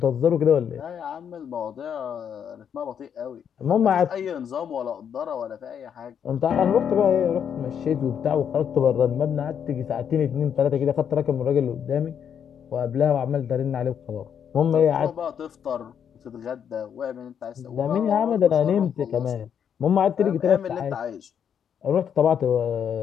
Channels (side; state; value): right; quieter; 8.2 dB